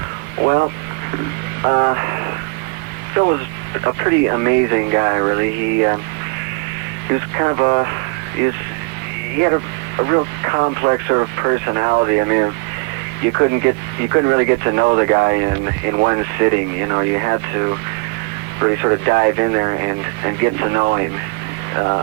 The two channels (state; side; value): quieter; left; 28.2 dB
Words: Well, Phil was a pretty amazing guy, really. He was kind of he had a real complex sort of personality. I mean, you couldn't really get to know the guy in one sitting. You know, you had to really sort of dive in there and get to know him.